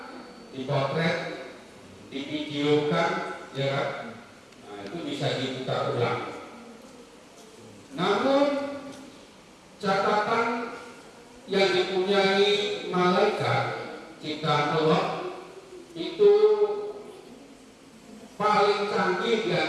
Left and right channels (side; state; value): both; identical; correlation 1.00